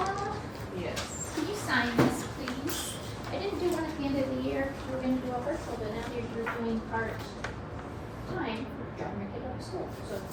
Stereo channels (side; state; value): both; identical; correlation 1.00